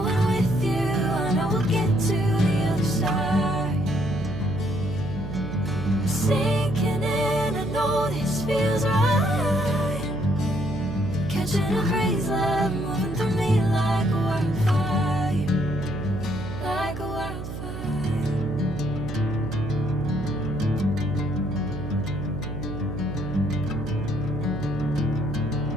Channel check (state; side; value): noise; right; hum, 8 dB below the sound